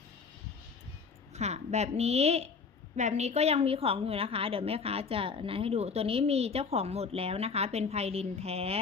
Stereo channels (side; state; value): right; quieter; 5.2 dB